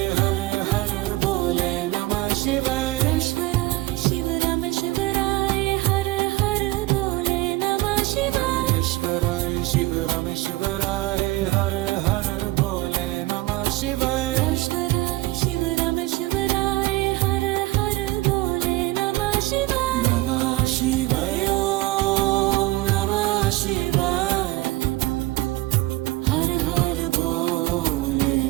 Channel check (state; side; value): quieter; left; 19.1 dB